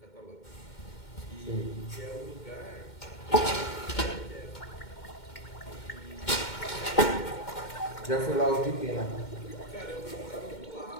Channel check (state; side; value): late; right; 2.1 ms